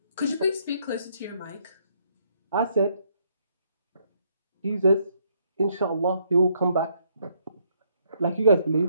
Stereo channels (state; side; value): inverted; both; correlation -0.72